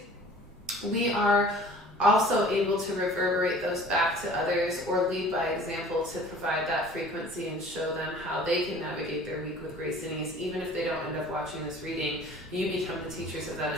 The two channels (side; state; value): both; normal; correlation 0.48